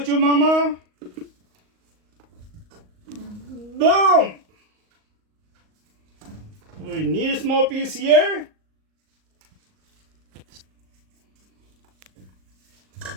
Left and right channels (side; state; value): left; late; 38 ms